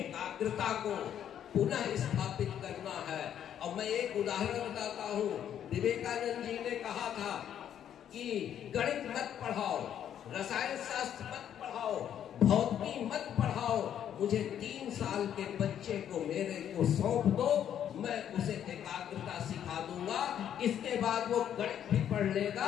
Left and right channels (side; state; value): right; quieter; 9.8 dB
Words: को पुनः स्थापित करना है। और मैं एक उदाहरण बताता हूँ, विवेकानंद जी ने कहा था कि गणित मत पढ़ाओ, रसायन शास्त्र मत पढ़ाओ, भौतिकी मत पढ़ाओ, मुझे 3 साल के बच्चे को मेरे को सौंप दो, मैं उसे एकाग्रता सिखा दूंगा। इसके बाद वो गणित भी पढ़